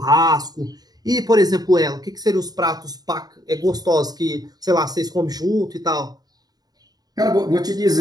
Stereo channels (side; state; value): left; late; 0.19 ms